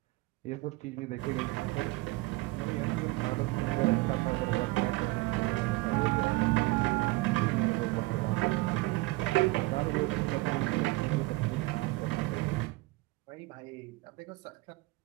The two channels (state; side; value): quieter; left; 21.8 dB